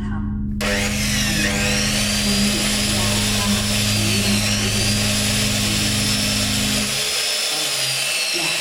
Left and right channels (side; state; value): both; identical; correlation 1.00